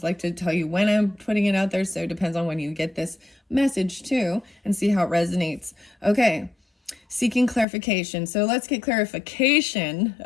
like to tell you when I'm putting it out there, so it depends on when you get this message too, and see how it resonates. Okay, seeking clarification. So let's get clarification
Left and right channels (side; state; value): right; drops out; at 7.7 s